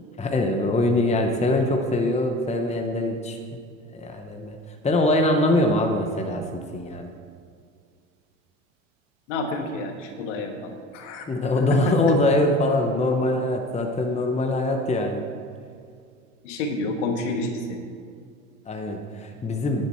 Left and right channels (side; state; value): both; normal; correlation 0.41